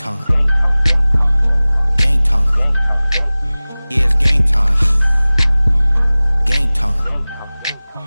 Game time. Yeah, it's game time. Game time.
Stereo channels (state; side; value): inverted; both; correlation -0.99